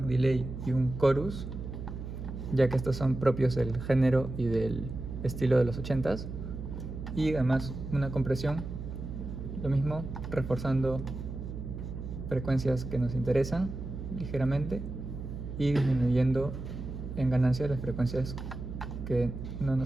delay y un chorus, ya que estos son propios del género y del estilo de los 80s, y además una compresión, lo mismo, reforzando frecuencias que nos interesan ligeramente y disminuyendo en ganancia las frecuencias que no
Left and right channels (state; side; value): noise; right; hum, 8 dB below the sound